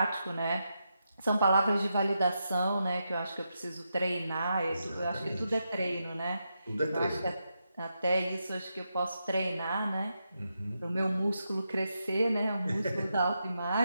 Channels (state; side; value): inverted; both; correlation -0.85